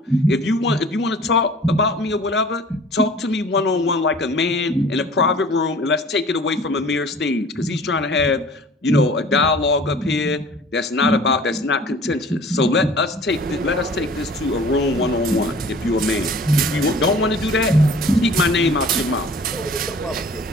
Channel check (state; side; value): normal; both; correlation 0.47